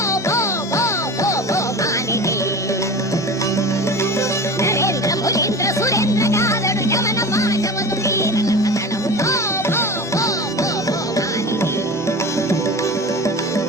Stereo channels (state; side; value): normal; both; correlation 0.34